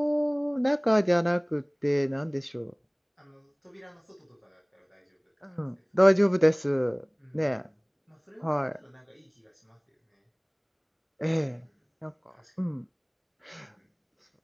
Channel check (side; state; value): both; identical; correlation 1.00